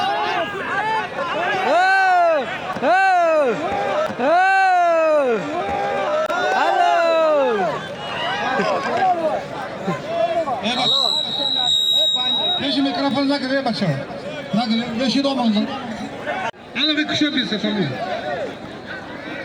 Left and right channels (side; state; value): both; identical; correlation 1.00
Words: Beşi mikrofon ne kadar bakşa? Ne kadar? Beşi doğmanızın. Ana bir kuşa bir sefer mi?